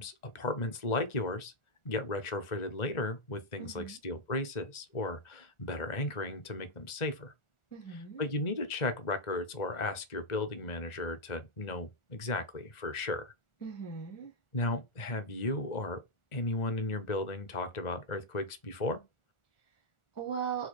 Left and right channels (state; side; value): late; right; 1.4 ms